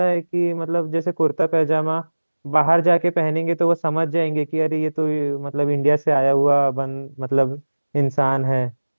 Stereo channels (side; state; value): both; inverted; correlation -1.00